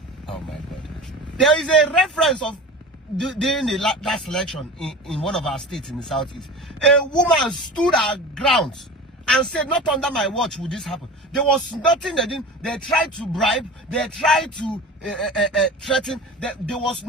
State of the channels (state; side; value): normal; both; correlation 0.34